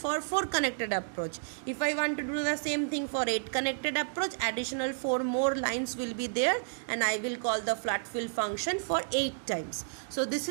4 connected approach. If I want to do the same thing for 8 connected approach, additional 4 more lines will be there, and I will call the flat fill function for 8 times. So this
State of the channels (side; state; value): left; silent; digital silence